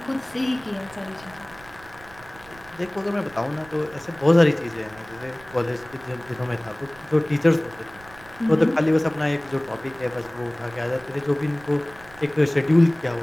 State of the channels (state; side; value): noise; right; rumble, 23 dB below the sound